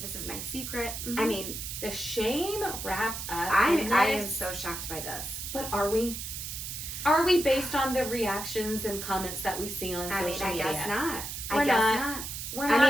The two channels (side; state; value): right; noise; hiss, 7 dB below the sound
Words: This is my secret. Mm-hmm. I mean, the shame wrapped up. I am so shocked by this. But are we? Are we based on the reactions and comments that we see on social media? I guess not. We're I guess not. We're not.